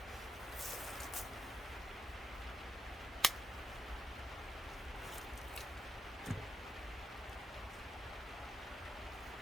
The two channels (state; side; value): normal; both; correlation 0.83